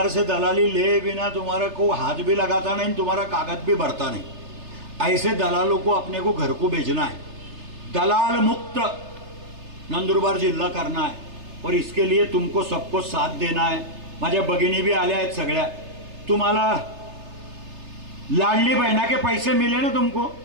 से दलाली ले बिना तुम्हारा को हाथ भी लगाता नहीं, तुम्हारा कागज भी भरता नहीं. ऐसे दलालों को अपने को घर को भेजना है. दलाल मुक्त नंदुरबार जिल्हा करना है और इसके लिए तुमको सबको साथ देना है. माझ्या भगिनी भी आल्या आहेत सगळ्या. तुम्हाला लाडली बहना के पैसे मिले ना, तुमको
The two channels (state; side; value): late; left; 3.3 ms